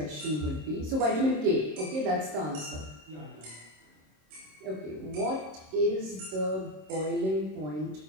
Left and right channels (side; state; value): left; late; 26 ms